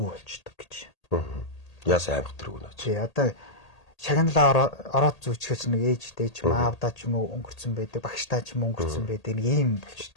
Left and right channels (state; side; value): late; right; 1.8 ms